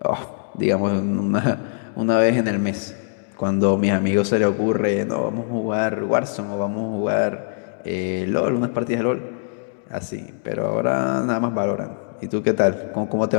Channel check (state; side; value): silent; right; digital silence